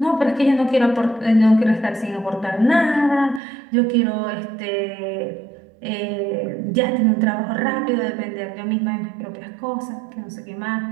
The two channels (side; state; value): left; drops out; at 3.4 s